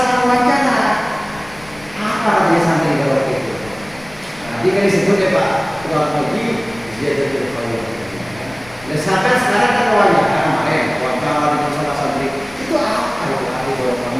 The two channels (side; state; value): left; noise; rumble, 22 dB below the sound